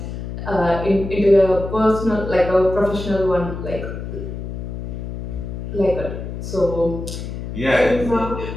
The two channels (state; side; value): noise; left; hum, 7 dB below the sound